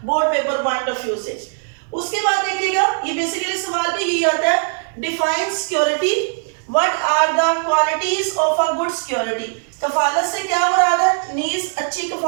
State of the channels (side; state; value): left; silent; 65 dB below the other